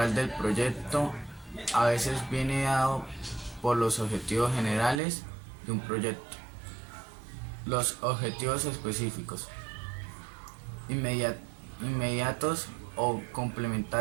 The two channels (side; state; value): left; drops out; at 5.0 s